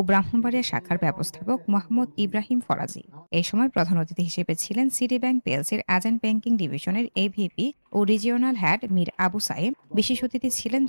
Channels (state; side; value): inverted; both; correlation -1.00